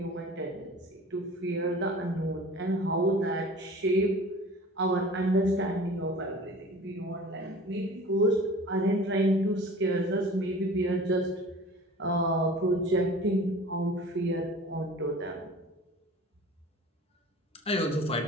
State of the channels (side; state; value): both; normal; correlation 0.42